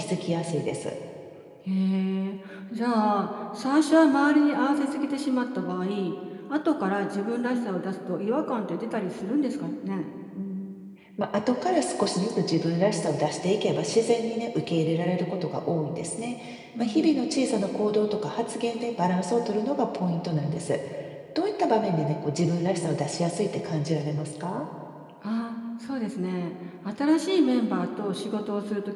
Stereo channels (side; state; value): both; identical; correlation 1.00